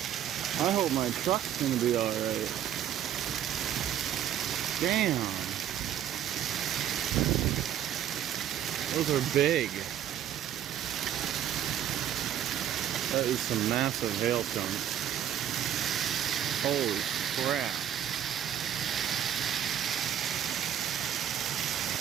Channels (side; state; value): left; quieter; 10.5 dB